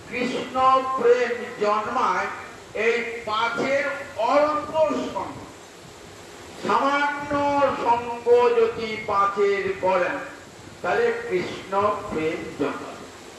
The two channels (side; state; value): both; identical; correlation 1.00